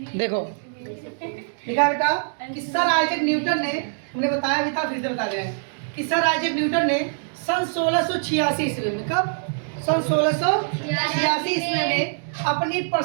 देखो लिखा बेटा कि सर आइजैक न्यूटन ने, हमने बताया भी था फिर से बता रहे हैं कि सर आइजैक न्यूटन ने सन 1686 ईस्वी में, कब? सन 1686 ईस्वी में अपनी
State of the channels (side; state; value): left; silent; digital silence